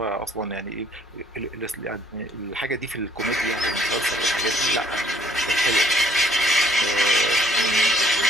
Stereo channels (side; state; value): both; normal; correlation 0.62